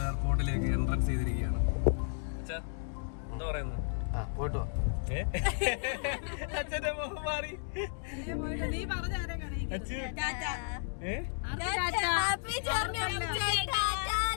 എയർപോർട്ടിലേക്ക് എൻട്രൻസ് ചെയ്തിരിക്കുകയാണ്. എന്താ പറയുന്നത്? പോയിട്ട് അച്ഛന്റെ മുഖം മാറി.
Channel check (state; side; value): silent; right; digital silence